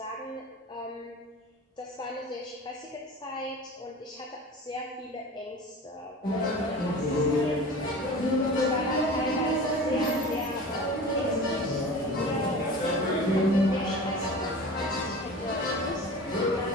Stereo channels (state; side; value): normal; both; correlation 0.36